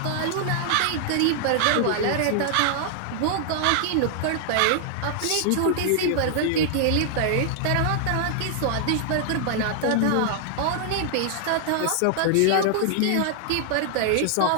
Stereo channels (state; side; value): different; both; correlation -0.01